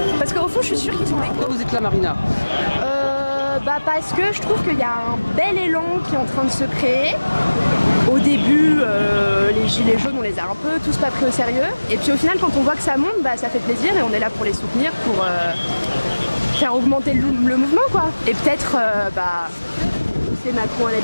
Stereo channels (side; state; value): both; inverted; correlation -1.00